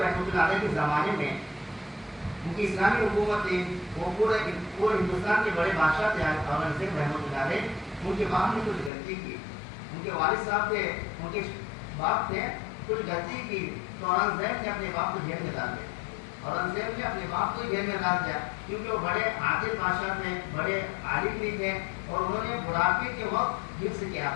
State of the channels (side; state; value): right; drops out; at 8.9 s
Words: رحمۃ اللہ علیہ کے زمانے میں ان کی اسلامی حکومت تھی، وہ پورے ہندوستان کے بڑے بادشاہ تھے اورنگزیب رحمۃ اللہ علیہ. ان کے باپ نے کچھ غلطی کی، ان کے والد صاحب تھے، ان کے باپ تھے، کچھ غلطی کی تو اورنگزیب نے اپنے باپ کو جیل میں ڈال دیا. اورنگزیب نے اپنے باپ کو جیل میں ڈال دیا کیونکہ وہ بڑے عادل بادشاہ تھے، بڑے عالم بھی تھے اور انہوں نے بڑھاپے کے وقت حفظ کیا